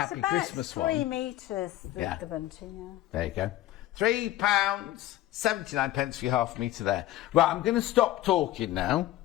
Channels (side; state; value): right; quieter; 15.0 dB